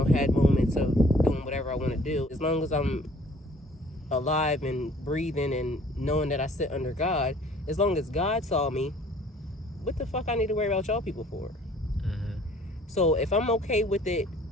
had moments of doing whatever I want to do. As long as I'm alive and breathing and knowing that I sit under God, as long as God saw me, what the fuck I need to worry about y'all people for? So if I'm okay with it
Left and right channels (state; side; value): normal; both; correlation 0.54